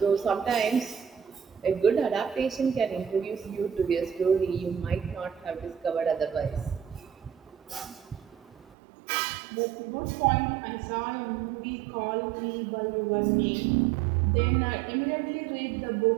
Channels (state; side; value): drops out; left; at 8.7 s